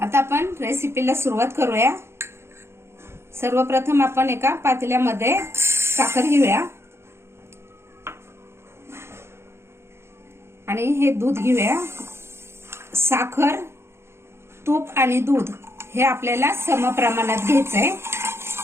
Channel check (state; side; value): late; left; 0.12 ms